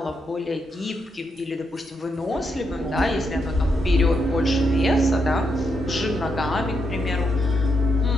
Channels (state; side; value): normal; both; correlation 0.81